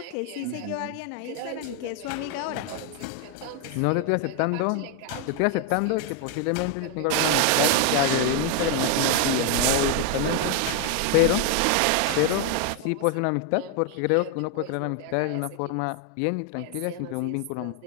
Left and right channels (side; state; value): both; different; correlation 0.01